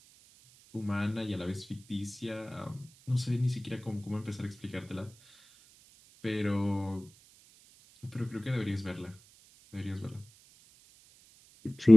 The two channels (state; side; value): noise; right; hiss, 26 dB below the sound